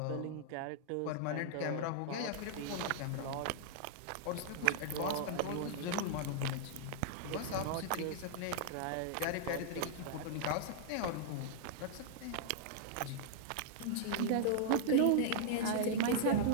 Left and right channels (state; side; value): different; both; correlation -0.01